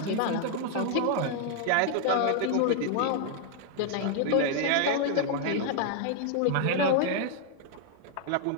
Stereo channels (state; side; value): different; both; correlation 0.00